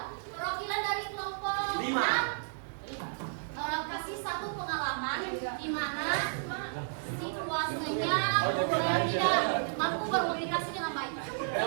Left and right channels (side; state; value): left; silent; digital silence